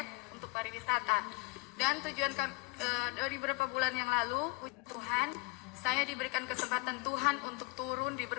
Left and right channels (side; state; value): right; quieter; 27.2 dB